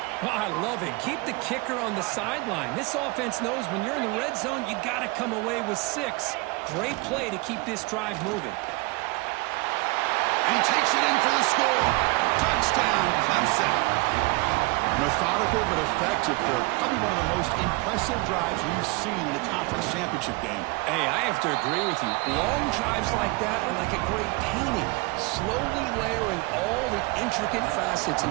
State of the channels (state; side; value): quieter; left; 24.9 dB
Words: Oh, I love it. Keep the kicker on the sideline. This offense knows when you're in the red zone, you got to come away with 6. Great play to keep this drive moving. And he takes it in for the score. Touchdown, Clemson. Methodical but effective. They're probably one of the most impressive drives we've seen in a conference championship game. Hey, I have to agree with you. Long drives like that are like a great painting. Slowly layering all the intricate facets